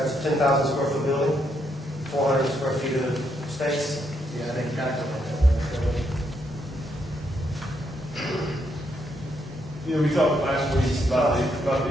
a 10,000 square foot building, 400 square feet of space. Yeah, I think calculate You know, we talked last week about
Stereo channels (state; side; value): normal; both; correlation 0.77